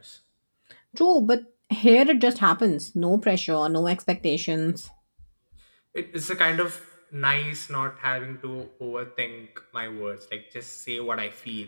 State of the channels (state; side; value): inverted; both; correlation -1.00